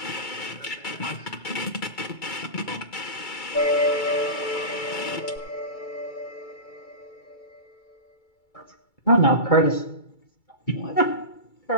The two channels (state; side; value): late; right; 2.3 ms